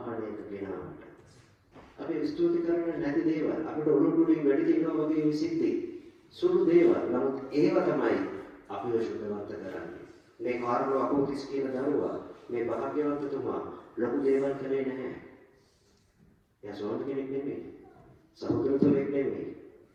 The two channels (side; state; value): both; identical; correlation 1.00